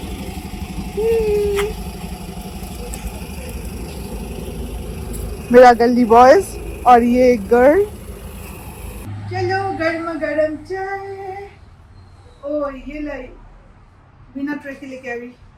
मेरा गली बॉयज और ये गर्ल। चलो गर्मा गर्म चाय। ओ ये लाई बिना ट्रे के लेके आई।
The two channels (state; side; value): identical; both; correlation 1.00